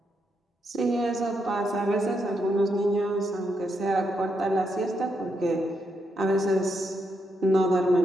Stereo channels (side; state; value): both; normal; correlation 0.81